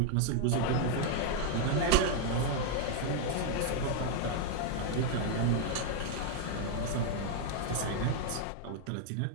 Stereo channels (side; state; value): both; different; correlation 0.00